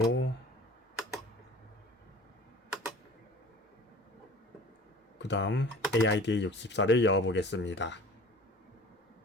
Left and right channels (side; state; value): both; normal; correlation 0.44